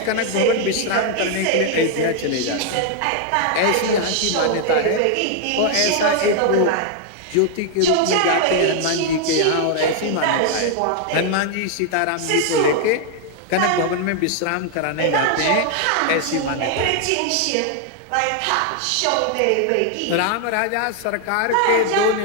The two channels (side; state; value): both; different; correlation 0.00